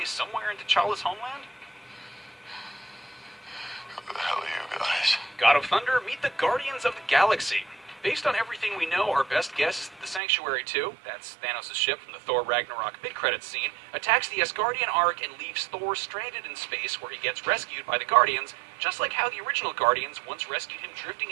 somewhere in T'Challa's homeland? Who the hell are you guys? God of Thunder, meet the Guardians of the Galaxy. Based on everything we know, our best guess is that the Sanctuary 2, that's Thanos' ship from the Thor Ragnarok mid-credits scene, attacks the Asgardian Ark and leaves Thor stranded in space where he gets rescued by the Guardians, just like how the original Guardians once rescued him drifting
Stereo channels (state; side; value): drops out; left; at 10.2 s